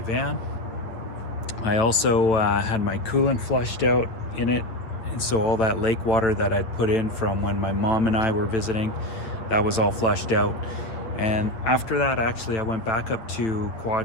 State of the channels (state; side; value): late; right; 9.3 ms